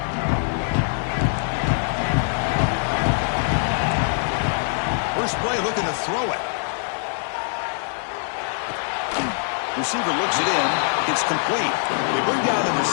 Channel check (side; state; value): right; silent; 63 dB below the other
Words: Looking to throw it. Receiver looks it in. It's complete. They bring down the